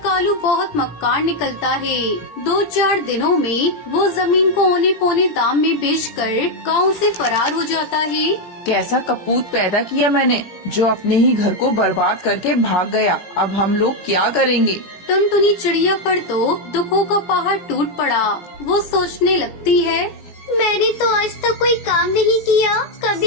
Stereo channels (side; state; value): right; late; 17 ms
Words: कालू बहुत मक्कार निकलता है। 2-4 दिनों में वो जमीन को औने पौने दाम में बेचकर गांव से फरार हो जाता है। कैसा कपूत पैदा किया मैंने, जो अपने ही घर को बर्बाद करके भाग गया। अब हम लोग क्या करेंगे? टुनटुनी चिड़िया पर तो दुखों का पहाड़ टूट पड़ा। वो सोचने लगती है, मैंने तो आज तक कोई काम नहीं किया,